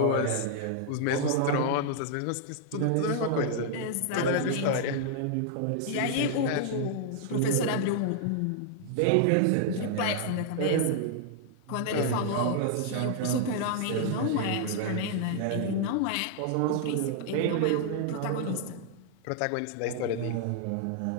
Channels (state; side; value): different; both; correlation 0.00